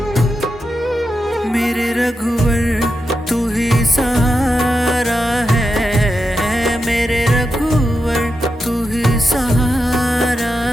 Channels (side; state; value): both; normal; correlation 0.88